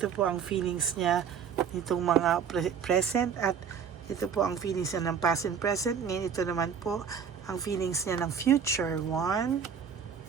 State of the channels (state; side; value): quieter; left; 7.1 dB